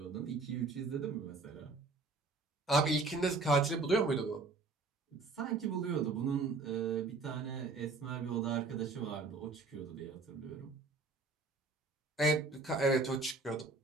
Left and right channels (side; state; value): left; quieter; 3.7 dB